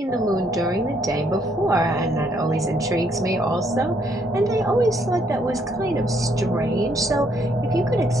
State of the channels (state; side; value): normal; both; correlation 0.70